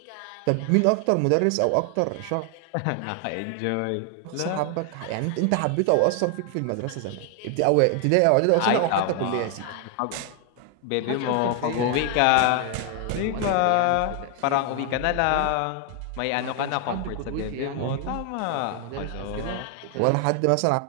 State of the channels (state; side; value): different; both; correlation 0.00